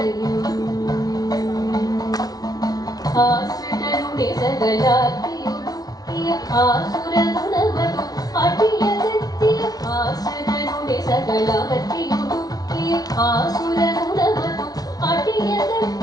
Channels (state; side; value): late; right; 0.18 ms